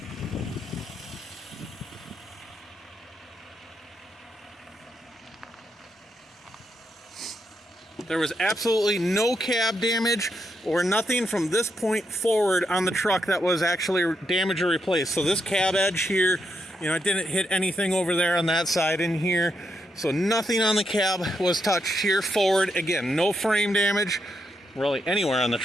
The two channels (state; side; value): normal; both; correlation 0.81